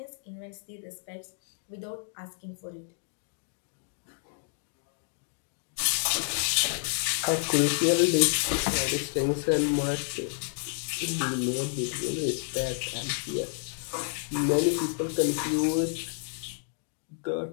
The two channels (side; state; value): right; silent; 58 dB below the other